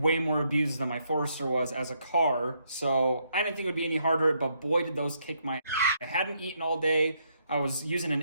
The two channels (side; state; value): both; inverted; correlation -0.74